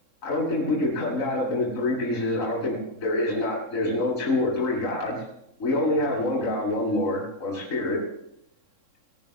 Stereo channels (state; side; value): late; right; 3.7 ms